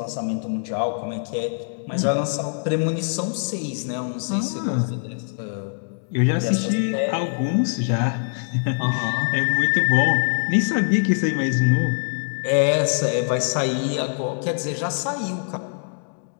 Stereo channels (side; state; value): right; silent; digital silence